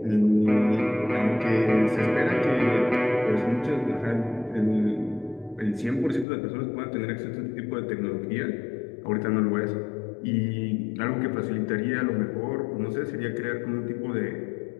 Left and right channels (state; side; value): drops out; right; at 6.2 s